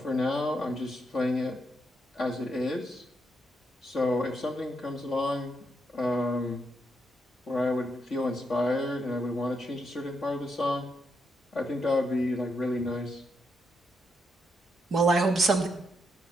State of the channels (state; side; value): normal; both; correlation 0.80